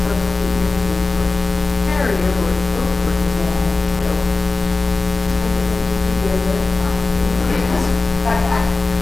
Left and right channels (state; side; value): quieter; right; 3.4 dB